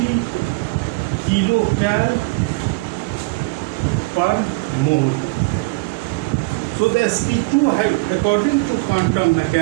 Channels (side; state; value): left; quieter; 26.3 dB